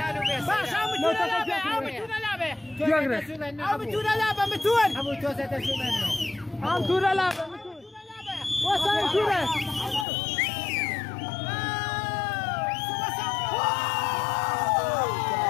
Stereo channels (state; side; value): drops out; right; at 10.1 s